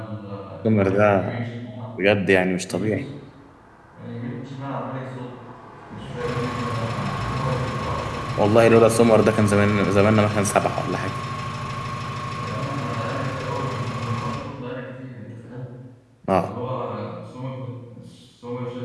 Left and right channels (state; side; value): identical; both; correlation 1.00